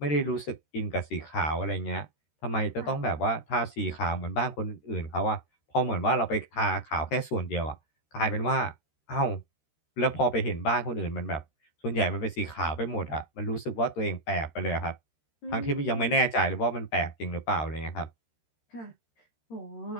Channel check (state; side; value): late; right; 13 ms